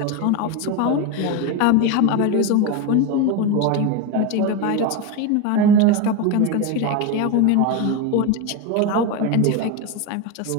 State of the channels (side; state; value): both; different; correlation 0.03